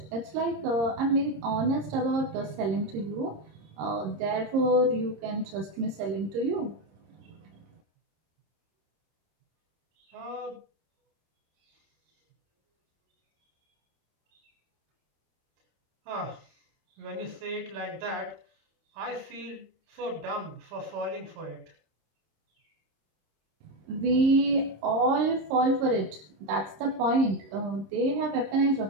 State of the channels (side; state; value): left; late; 26 ms